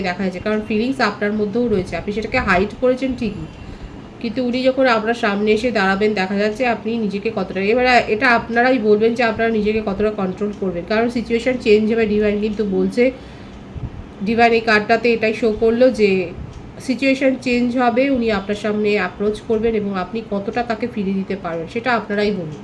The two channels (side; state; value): both; identical; correlation 1.00